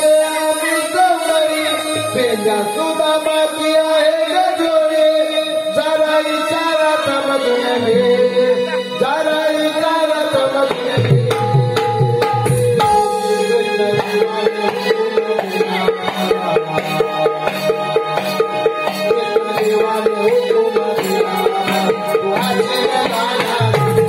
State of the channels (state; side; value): identical; both; correlation 1.00